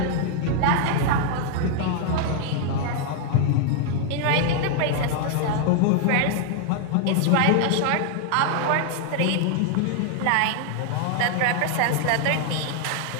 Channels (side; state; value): both; different; correlation 0.00